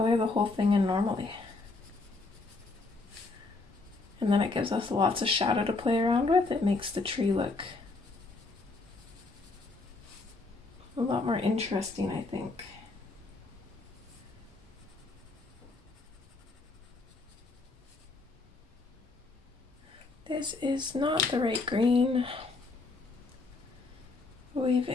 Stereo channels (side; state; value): right; quieter; 3.6 dB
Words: the whole thing in normally. And then it gives us lots of shadow to play around with. It makes the tree look a lot more interesting, I think. This is not the right green.